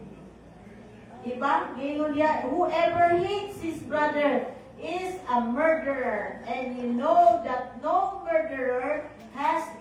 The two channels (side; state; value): both; identical; correlation 1.00